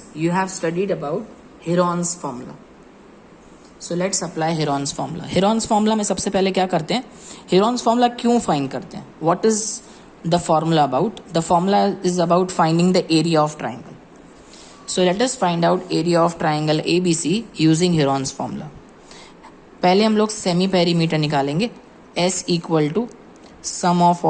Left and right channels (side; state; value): both; identical; correlation 1.00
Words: you have studied about Heron's formula. So let's apply Heron's formula. Heron's formula में सबसे पहले क्या करते हैं, Heron's formula क्यों find करते हैं, what is the formula about? The formula is about finding the area of triangle. So let us find out area of triangle ABC using Heron's formula. पहले हम लोग सेमी पेरीमीटर निकालेंगे. S equal to sum of